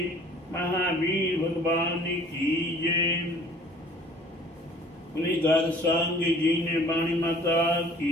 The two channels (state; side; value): normal; both; correlation 0.51